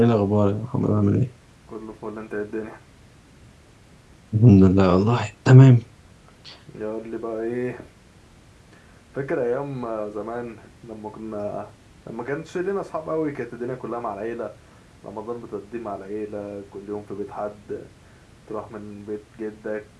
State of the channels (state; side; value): identical; both; correlation 1.00